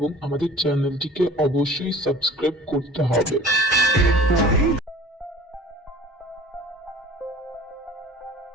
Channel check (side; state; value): both; normal; correlation 0.45